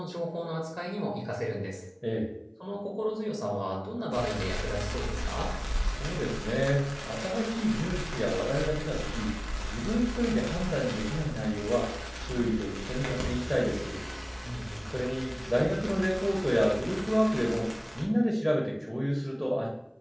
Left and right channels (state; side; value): identical; both; correlation 1.00